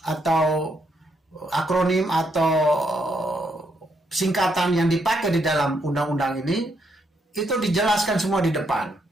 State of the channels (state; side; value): normal; both; correlation 0.76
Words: atau akronim atau singkatan yang dipakai di dalam undang-undang ini, itu dijelaskan semua di depan.